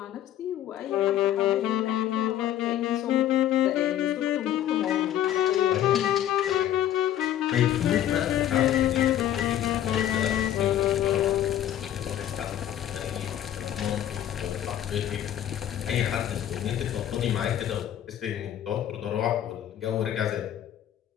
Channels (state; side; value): quieter; right; 11.4 dB